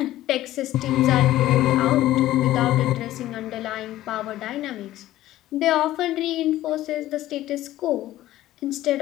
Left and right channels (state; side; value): quieter; right; 14.8 dB